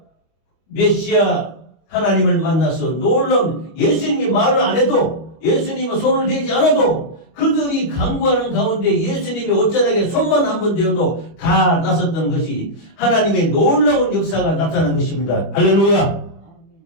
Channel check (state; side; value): late; right; 25 ms